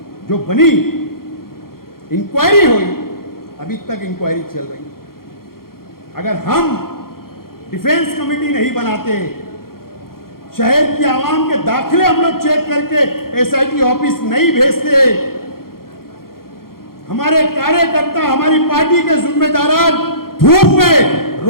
जो बनी, इंक्वायरी हुई, अभी तक इंक्वायरी चल रही। अगर हम डिफेंस कमेटी नहीं बनाते, शहर की आवाम के दाखिले हम लोग चेक करके एसआईटी ऑफिस नहीं भेजते, हमारे कार्यकर्ता, हमारी पार्टी के जिम्मेदार धूप में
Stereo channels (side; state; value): right; late; 0.93 ms